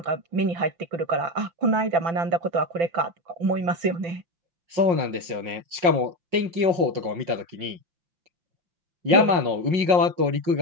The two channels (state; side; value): late; left; 5.5 ms